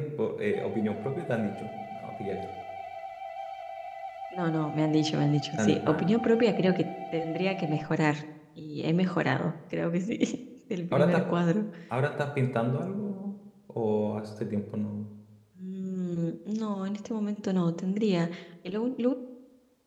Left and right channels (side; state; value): both; identical; correlation 1.00